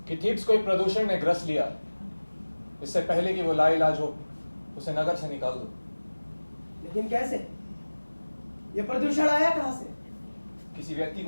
कि थीब्स को एक प्रदूषण ने ग्रस लिया। इससे पहले कि वो लाइलाज हो, उसे नगर से निकाल दो। लेकिन कैसे? ये प्रदूषण आया कहां से? किसी व्यक्ति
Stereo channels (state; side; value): inverted; both; correlation -1.00